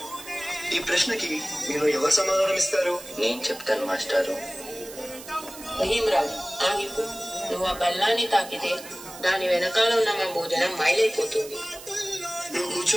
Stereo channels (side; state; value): right; noise; hiss, 15 dB below the sound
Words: ఈ ప్రశ్నకి మీరు ఎవరు సమాధానం ఇస్తారు? నేను చెప్తాను మాస్టారు. భీమరావు, ఆగిపో. నువ్వు ఆ బెల్లాన్ని తాకితే దాని వెనకాల ఉన్న మా భోజనం మైలైపోతుంది. నువ్వు